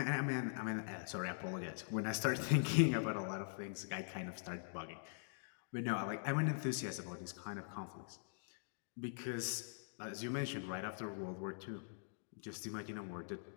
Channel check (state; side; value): silent; right; digital silence